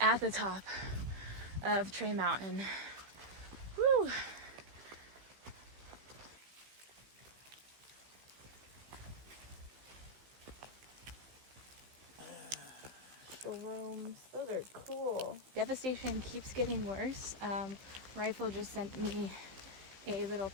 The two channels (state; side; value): late; left; 15 ms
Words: the top of Trey Mountain. Woo! Shrooms, those are cool. Devastation keeps getting worse. Rifle just sent me a little